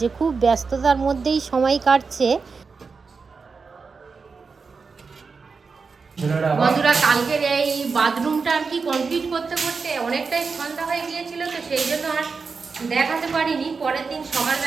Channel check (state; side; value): quieter; left; 4.9 dB